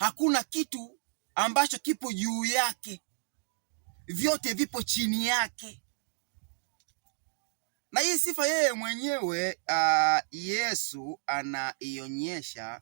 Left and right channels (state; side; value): silent; left; digital silence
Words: kitu ambacho kipo juu yake, vyote vipo chini yake. Na hii sifa yeye mwenyewe Yesu anaionyesha